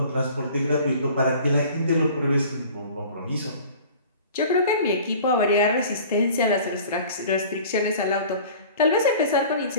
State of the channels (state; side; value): inverted; both; correlation -0.45